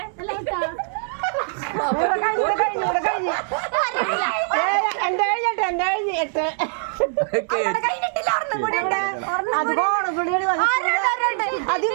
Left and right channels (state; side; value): silent; left; 64 dB below the other